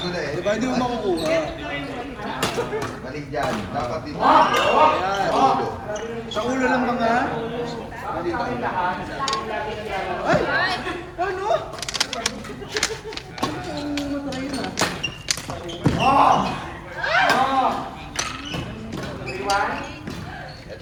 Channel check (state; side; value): identical; both; correlation 1.00